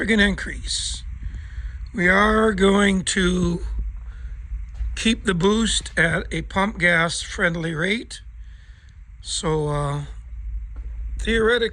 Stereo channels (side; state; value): both; identical; correlation 1.00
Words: increase. We are going to keep the boost at a pump gas friendly rate. So